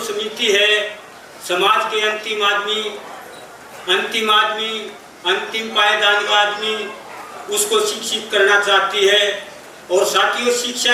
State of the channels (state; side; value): identical; both; correlation 1.00